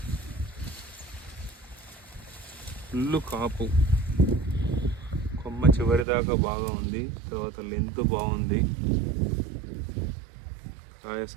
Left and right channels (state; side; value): drops out; left; at 6.1 s